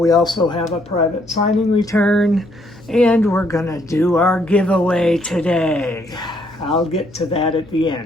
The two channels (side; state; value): left; noise; hum, 24 dB below the sound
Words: also have a private signing return, and we're gonna do our giveaway today. I'll get to that at the